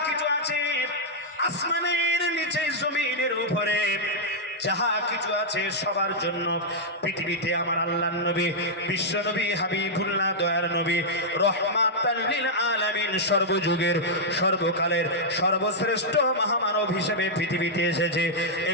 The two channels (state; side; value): normal; both; correlation -0.06